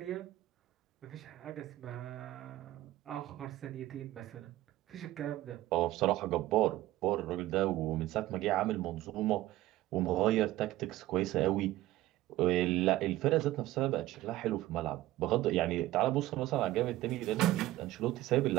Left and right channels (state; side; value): quieter; left; 16.0 dB